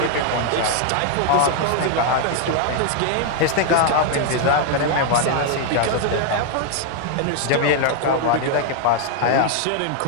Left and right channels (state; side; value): different; both; correlation 0.00